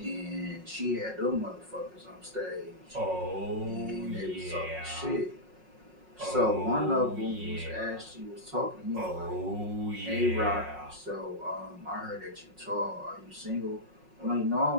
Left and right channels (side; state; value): left; late; 5.5 ms